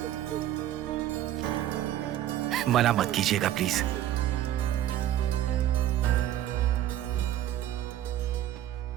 मना मत कीजिएगा प्लीज।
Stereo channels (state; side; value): quieter; left; 12.4 dB